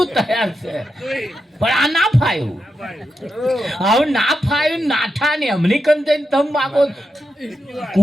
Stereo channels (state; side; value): normal; both; correlation 0.87